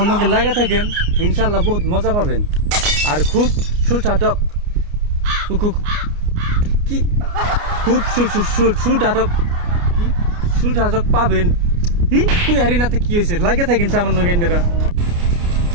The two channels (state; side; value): late; left; 29 ms